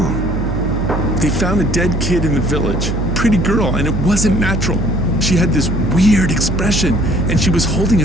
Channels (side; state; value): right; noise; hum, 2 dB below the sound